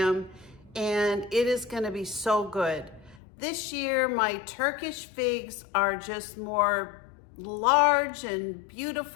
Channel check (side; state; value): right; drops out; at 3.2 s